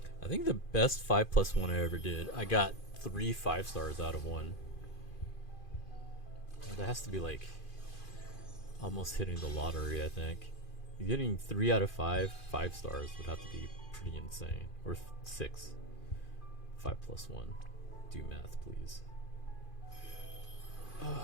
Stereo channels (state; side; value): late; right; 2.5 ms